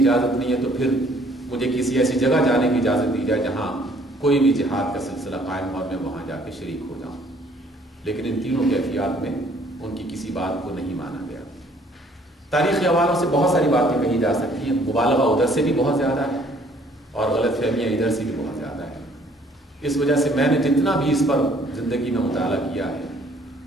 نہیں ہے تو پھر مجھے کسی ایسی جگہ جانے کی اجازت دی جائے جہاں کوئی بھی جہاد کا سلسلہ قائم ہو اور میں وہاں جا کے شریک ہو جاؤں۔ لیکن ان تینوں کیفیات میں ان کی کسی بات کو نہیں مانا گیا۔ تاریخی حوالوں سے بہت ساری باتیں کہی جا سکتی ہیں، مبالغہ ادھر سے بھی بہت زیادہ ہے اور غلط فہمیاں ادھر سے بھی بہت زیادہ ہے۔ اس وجہ سے میں نے جتنا بھی اس پر زندگی میں مطالعہ کیا ہے،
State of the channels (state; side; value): normal; both; correlation 0.60